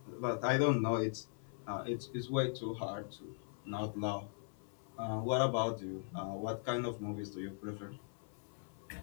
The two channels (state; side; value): silent; right; 51 dB below the other